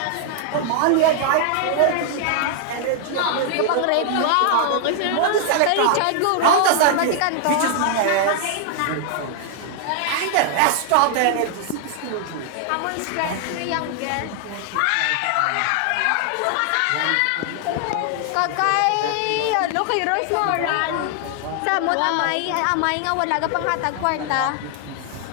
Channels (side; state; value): both; different; correlation 0.00